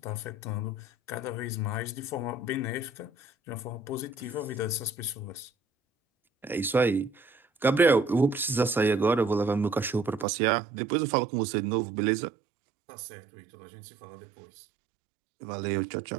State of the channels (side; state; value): left; drops out; at 10.2 s